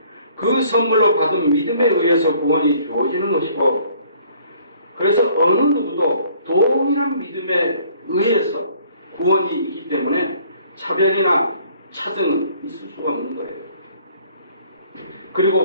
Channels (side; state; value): both; inverted; correlation -0.58